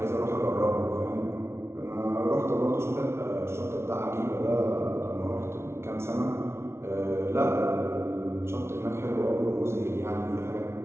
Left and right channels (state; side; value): late; left; 0.13 ms